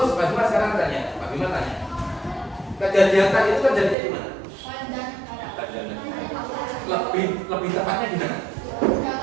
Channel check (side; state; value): left; drops out; at 4.0 s